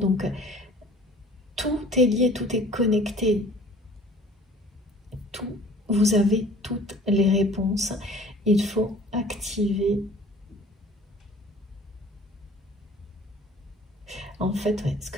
tout est lié, tout est connecté. Tout, vous avez toutes les réponses. Il faut activer. En fait, ouais, ce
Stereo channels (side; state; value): both; normal; correlation 0.49